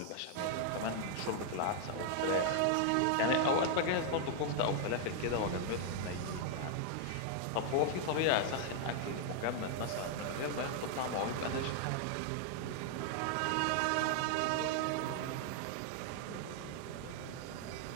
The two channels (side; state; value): both; different; correlation 0.00